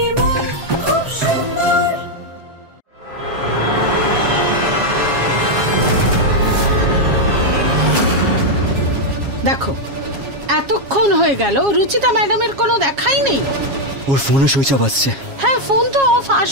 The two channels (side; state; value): left; late; 7.3 ms